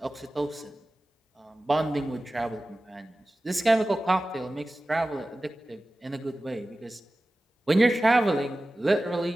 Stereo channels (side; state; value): both; normal; correlation 0.96